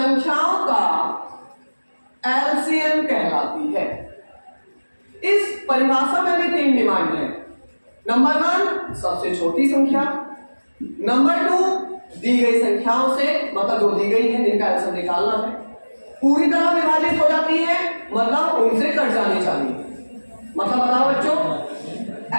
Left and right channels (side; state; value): both; inverted; correlation -1.00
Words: का एलसीएम कहलाती है। इस परिभाषा में भी 3 डिमांड है। नंबर 1 सबसे छोटी संख्या, नंबर 2 दी गई संख्याओं से, मतलब जो दी गई है जिनका एलसीएम निकालना है, पूरी तरह विभाजित हो जाती है, मतलब उनसे कट जानी चाहिए। मतलब बताओ बच्चों,